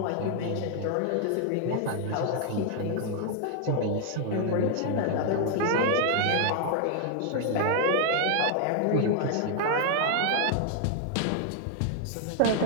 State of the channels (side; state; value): both; different; correlation 0.00